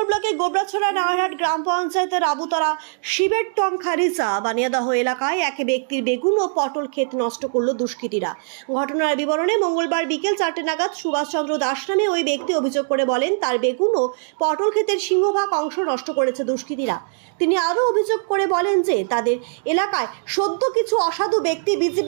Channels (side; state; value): left; silent; digital silence